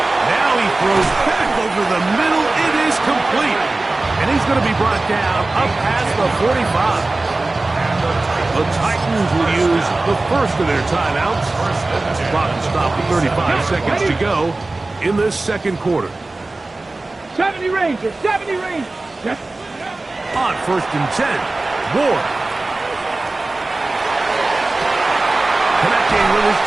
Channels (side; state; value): left; quieter; 3.1 dB